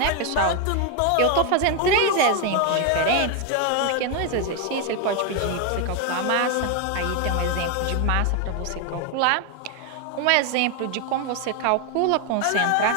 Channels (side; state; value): both; different; correlation 0.01